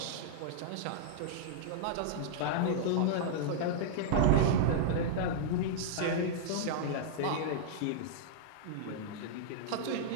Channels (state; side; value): different; both; correlation -0.01